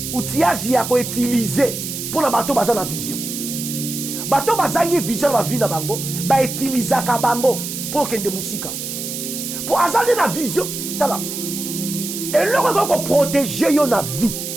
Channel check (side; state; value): right; noise; hiss, 6 dB below the sound